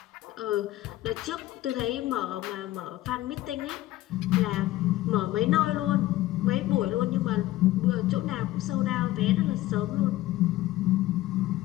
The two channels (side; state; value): right; quieter; 16.0 dB